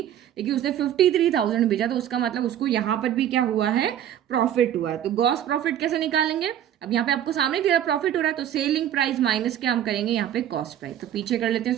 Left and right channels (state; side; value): quieter; left; 10.8 dB